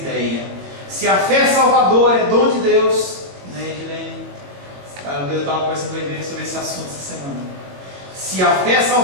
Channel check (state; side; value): late; left; 22 ms